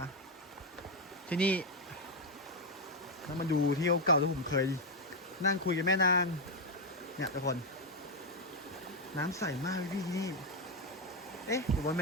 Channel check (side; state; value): both; normal; correlation 0.04